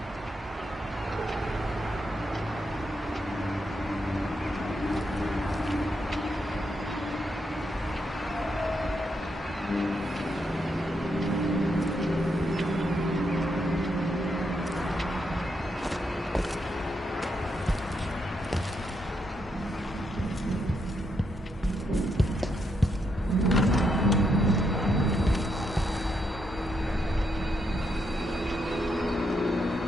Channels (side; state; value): both; normal; correlation 0.80